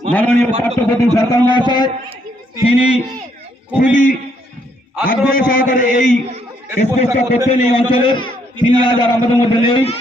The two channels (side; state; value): both; normal; correlation 0.71